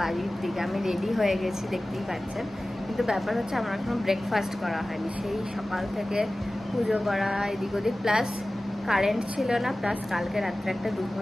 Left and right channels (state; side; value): normal; both; correlation 0.97